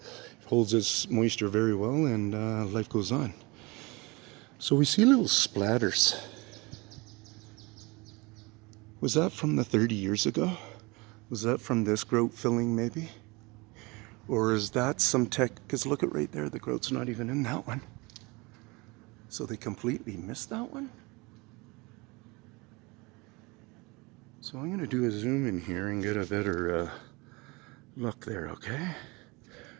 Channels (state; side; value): quieter; left; 25.6 dB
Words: holds its moisture very well and life goes on. So we see little splatters. Was that from the 30 years ago? Was that from this grout filling maybe? Or is that some tech? Because look at right there, the grout's not even in that one. So they completely missed that one? So I'm going to do a zoom in here and get a better look there, okay?